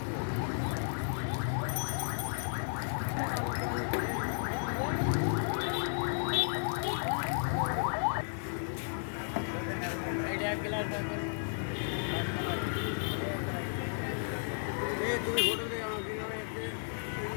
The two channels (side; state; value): right; silent; 55 dB below the other